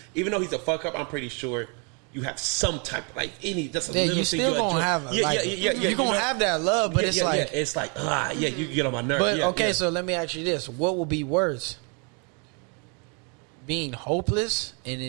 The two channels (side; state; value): left; quieter; 35.6 dB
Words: Even though he's a fuck up, I'm pretty sure you have some type of, like, just a little you thing still gonna have you're gonna have that love, but it's like it's like you get on my nerves. But okay, so let me ask you this: what will be worse? Being hopeless and